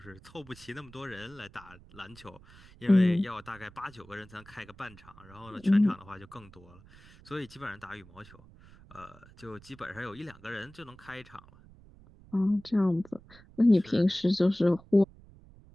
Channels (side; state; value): right; noise; rumble, 23 dB below the sound